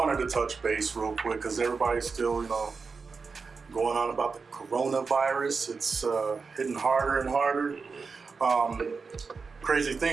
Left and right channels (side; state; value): left; quieter; 4.8 dB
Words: to touch base real quick because everybody's still, going on about the coronavirus. It's hitting harder and harder. Crazy